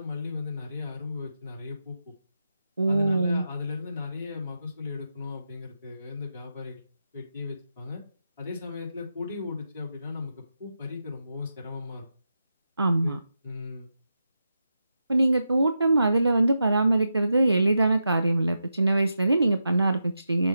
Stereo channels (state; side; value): inverted; both; correlation -0.88